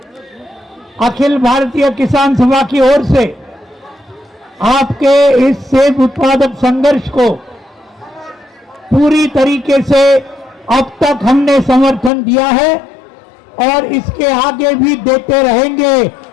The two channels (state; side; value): drops out; right; at 12.1 s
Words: अखिल भारतीय किसान सभा की ओर से आपके इस सेब उत्पादक संघर्ष को पूरी तरीके से अब तक हमने समर्थन दिया है और इसके आगे भी देते रहेंगे